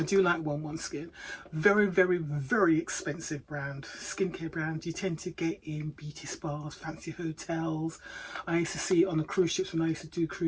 do like 11 Skin. Very, very, very expensive brand. Skincare brand you tend to get in beauty spas, fancy hotels. I used to see it on the cruise ships when I used to do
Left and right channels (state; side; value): identical; both; correlation 1.00